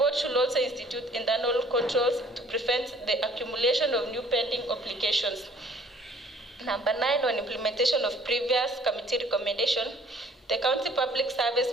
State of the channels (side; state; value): both; normal; correlation 0.56